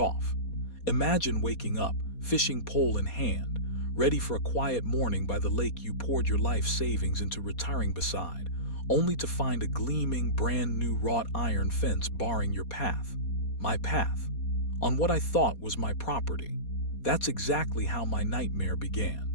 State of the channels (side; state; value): right; late; 4.2 ms